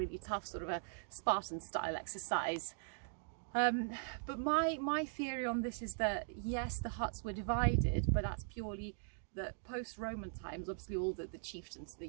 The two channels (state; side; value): silent; left; digital silence